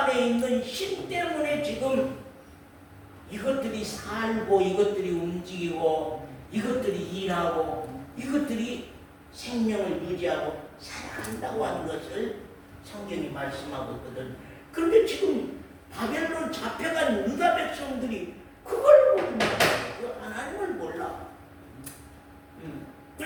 있는 신 때문에 지금 이것들이 살고, 이것들이 움직이고, 이것들이 일하고, 이것들이 생명을 유지하고 살아간다고 하는 것을 성경이 말씀하고 있거든. 그런데 지금 바벨론 잡혀간 유다 백성들이 그걸 모른다. 하나님을 몰라.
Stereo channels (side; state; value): both; identical; correlation 1.00